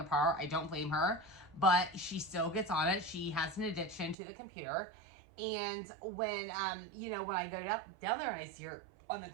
I don't blame her, but she still gets on it. She has an addiction to the computer. And when, you know, when I go down there and I see her on the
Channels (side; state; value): left; drops out; at 4.2 s